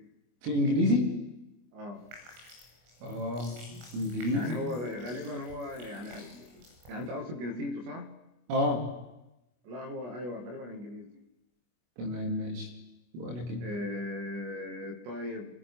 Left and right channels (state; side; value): late; left; 25 ms